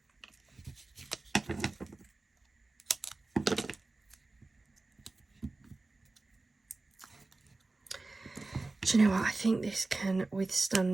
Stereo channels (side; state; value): left; quieter; 3.3 dB